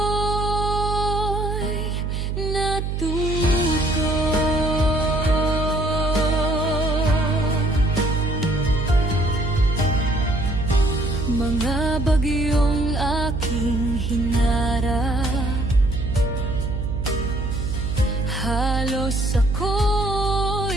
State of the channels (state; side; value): noise; right; hum, 2 dB below the sound